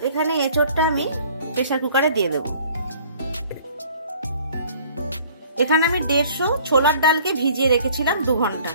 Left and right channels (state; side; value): inverted; both; correlation -0.54